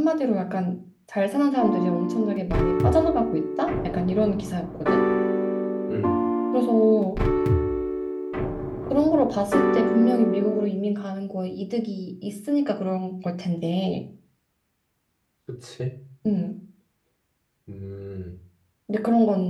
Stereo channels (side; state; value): both; identical; correlation 1.00